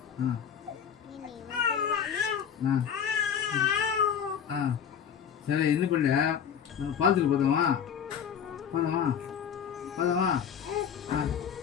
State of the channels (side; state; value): right; quieter; 8.0 dB